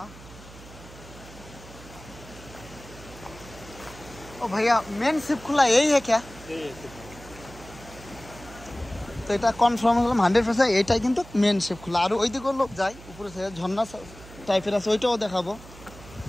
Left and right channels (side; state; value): right; noise; hum, 18 dB below the sound